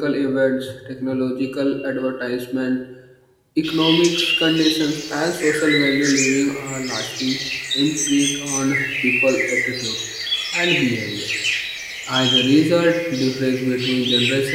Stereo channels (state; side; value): identical; both; correlation 1.00